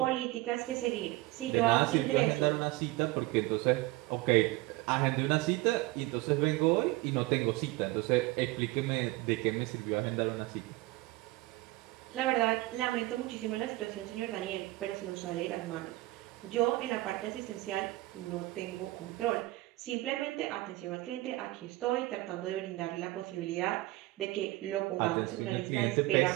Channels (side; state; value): left; quieter; 19.2 dB